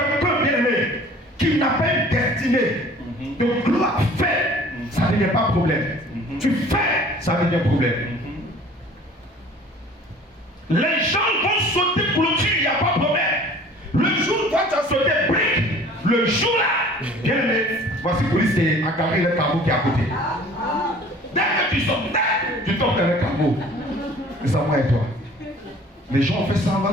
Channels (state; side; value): normal; both; correlation 0.49